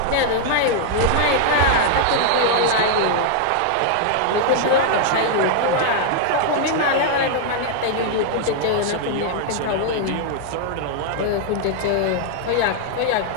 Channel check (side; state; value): both; different; correlation 0.00